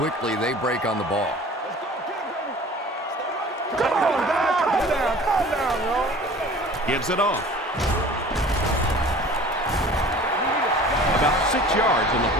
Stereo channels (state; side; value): normal; both; correlation 0.44